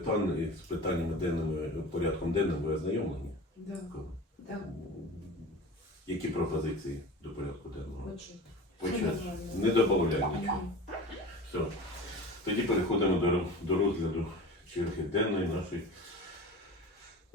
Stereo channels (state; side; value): normal; both; correlation 0.35